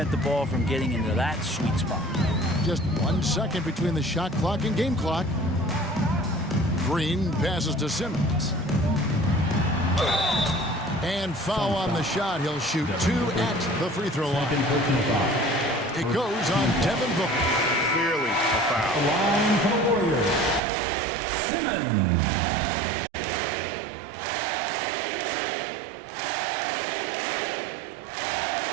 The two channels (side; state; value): left; drops out; at 20.6 s